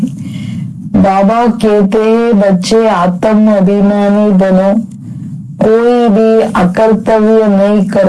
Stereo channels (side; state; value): both; identical; correlation 1.00